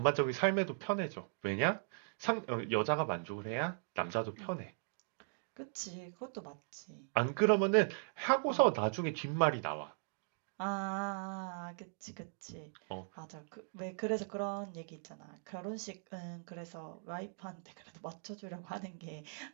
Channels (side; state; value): left; silent; digital silence